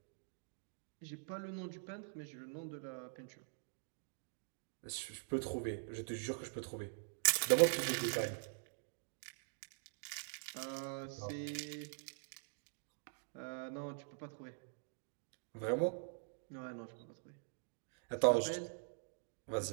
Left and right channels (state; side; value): silent; left; digital silence